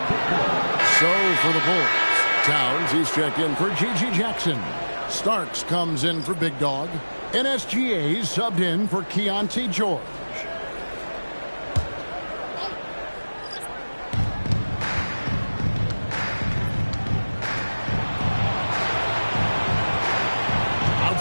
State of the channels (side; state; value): both; inverted; correlation -1.00